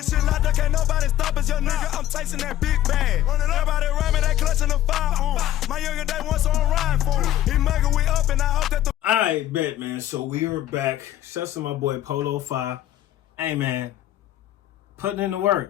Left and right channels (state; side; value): quieter; right; 12.9 dB